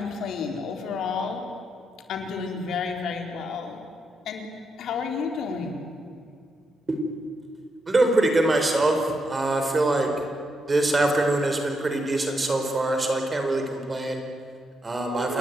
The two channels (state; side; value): normal; both; correlation 0.81